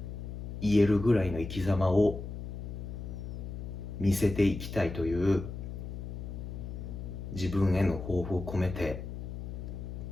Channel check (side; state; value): left; noise; hum, 7 dB below the sound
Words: 言えるぐらいの生き様を見せていきたいという自分への抱負を込めて